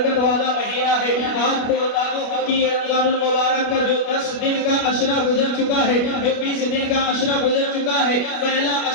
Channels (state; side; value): late; right; 29 ms